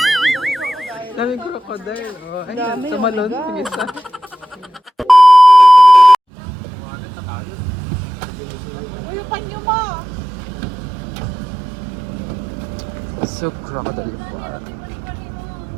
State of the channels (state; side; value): drops out; left; at 6.2 s